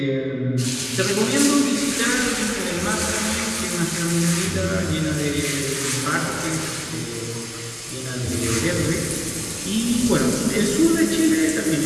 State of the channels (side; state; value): both; identical; correlation 1.00